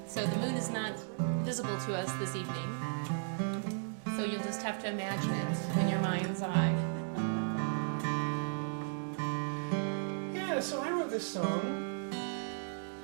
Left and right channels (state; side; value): silent; left; digital silence